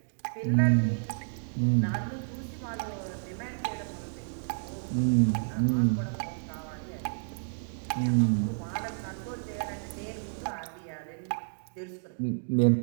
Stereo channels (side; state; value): left; silent; digital silence